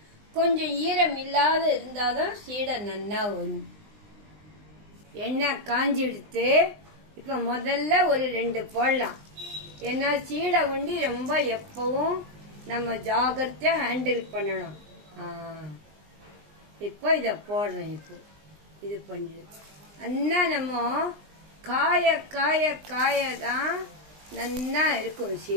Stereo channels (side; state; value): left; late; 20 ms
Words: கொஞ்சம் ஈரம் இல்லாத இருந்தாதான் சீடை நல்லா வரும். எண்ணெய் காஞ்சி எடுத்து இப்ப முதல்ல ஒரு 2 போடலாம். ஏன்னா சீடை ரொம்ப எப்பவும் நம்ம ஜாகிரதையா ஹேண்டில் பண்ணணும். இப்போ இத போடுறேன். இப்போ இது பண்ணிடு. அண்ணா நம்ம காய காய காயதான் நல்லா இருக்கும்